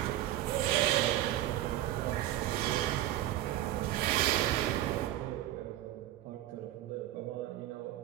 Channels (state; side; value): quieter; left; 13.8 dB